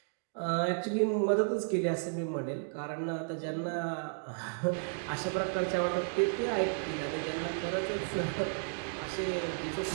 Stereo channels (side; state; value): left; silent; digital silence